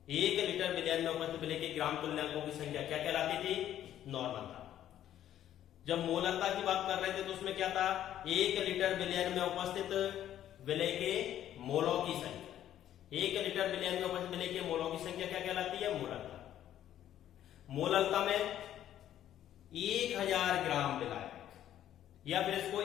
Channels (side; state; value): right; quieter; 11.5 dB